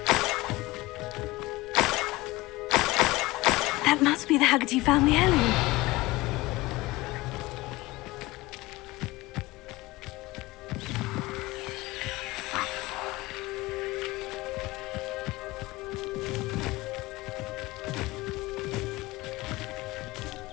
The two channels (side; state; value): right; quieter; 20.3 dB